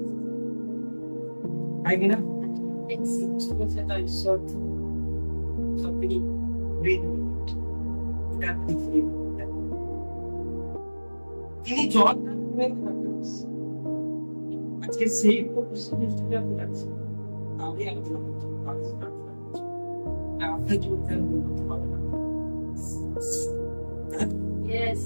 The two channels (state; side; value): inverted; both; correlation -1.00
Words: তাই কিনা? তিনি জল আজকে সেই আমি আলোচনা করছি আপনার জীবন করতে পারবে না